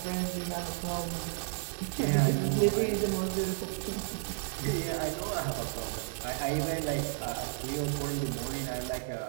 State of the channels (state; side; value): silent; left; digital silence